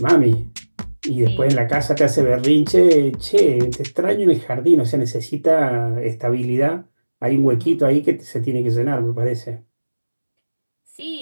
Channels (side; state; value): both; inverted; correlation -1.00